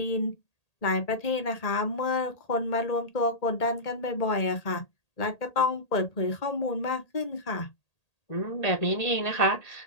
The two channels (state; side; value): late; right; 1.8 ms